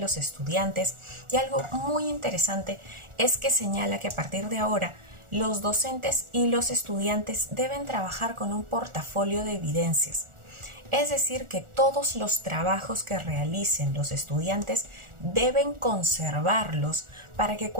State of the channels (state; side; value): late; left; 1.4 ms